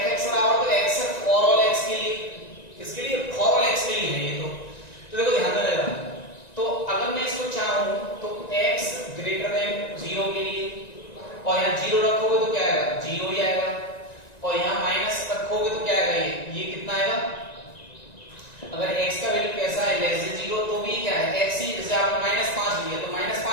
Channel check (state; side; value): late; right; 1.9 ms